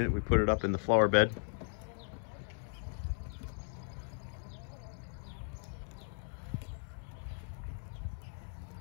we put it up in the flower bed.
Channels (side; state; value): right; silent; 53 dB below the other